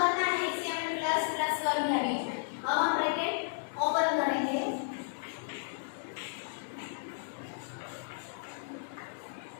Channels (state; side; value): silent; right; digital silence